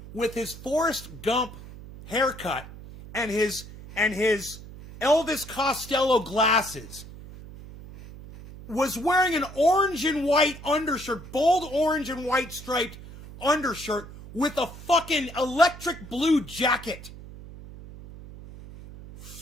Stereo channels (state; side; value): noise; right; hum, 15 dB below the sound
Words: Forrest Gump haircut and his Elvis Costello glasses was wearing an orange and white undershirt, bold orange and white striped undershirt with a fucking electric blue jacket.